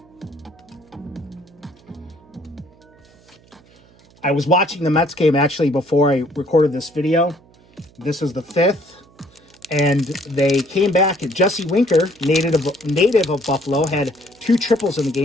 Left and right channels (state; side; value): noise; right; hum, 28 dB below the sound